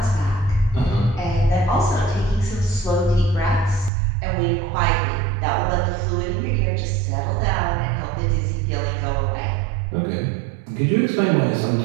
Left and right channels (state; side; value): drops out; left; at 3.9 s